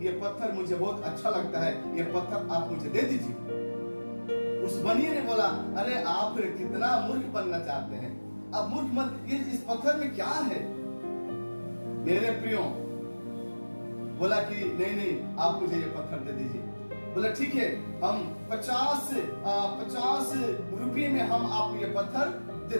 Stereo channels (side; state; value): both; inverted; correlation -1.00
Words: ये पत्थर मुझे बहुत अच्छा लगता है, ये पत्थर आप मुझे दे दीजिए। उस बनिए ने बोला, अरे आप कितना मूर्ख बनना चाहते हैं, अब मूर्ख मत, इस पत्थर में क्या है? मेरे प्रियो बोला कि नहीं, आप मुझे ये पत्थर दे दीजिए। बोला ठीक है, हम 50 रुपये में हम आपको ये पत्थर दे